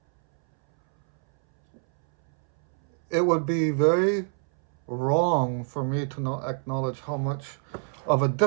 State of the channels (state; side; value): silent; left; 61 dB below the other